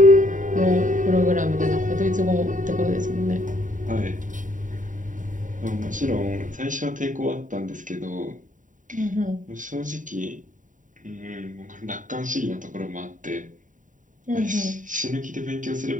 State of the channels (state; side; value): late; left; 0.38 ms